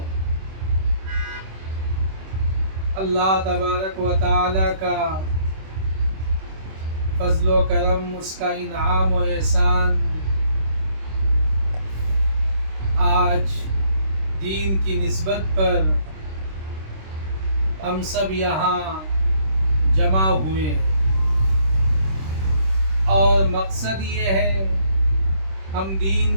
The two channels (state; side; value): late; left; 26 ms